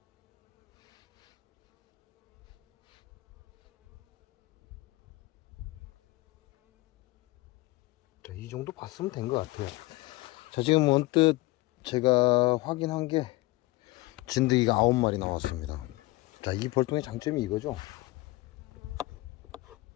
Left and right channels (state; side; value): quieter; right; 20.9 dB